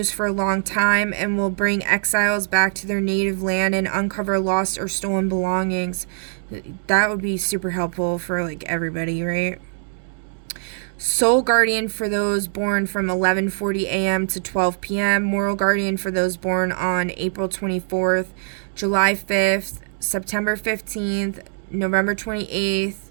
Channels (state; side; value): silent; left; digital silence